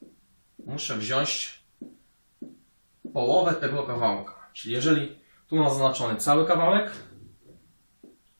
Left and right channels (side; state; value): both; inverted; correlation -1.00